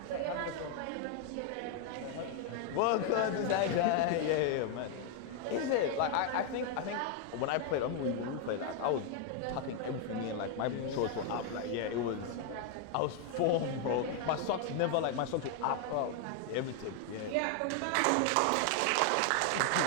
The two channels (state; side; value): different; both; correlation 0.00